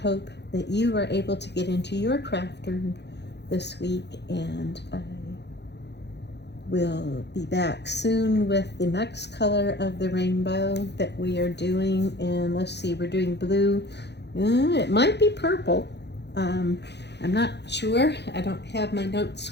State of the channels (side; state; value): right; late; 0.50 ms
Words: hope that you are able to get into your craft room this week. And I will be back soon with the next color of the rainbow that we are doing. And let's see, we're doing blue. It might be purple. I'm not sure. I don't have my notes